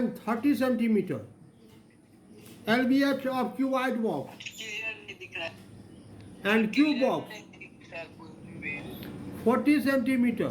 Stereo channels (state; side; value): identical; both; correlation 1.00